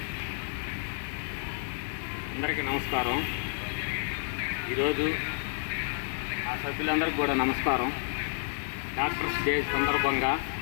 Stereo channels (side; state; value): right; silent; digital silence